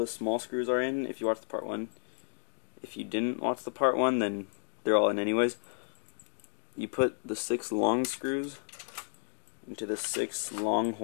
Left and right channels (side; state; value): right; silent; digital silence